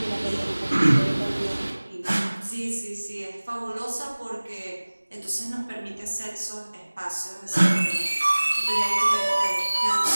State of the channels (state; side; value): inverted; both; correlation -1.00